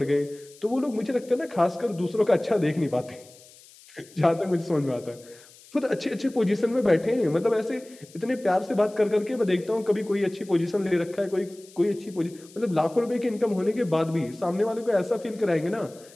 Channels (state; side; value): noise; left; hiss, 24 dB below the sound